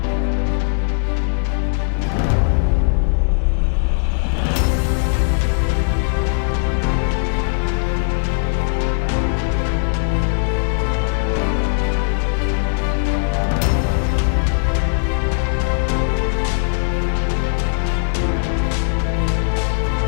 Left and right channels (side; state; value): right; silent; digital silence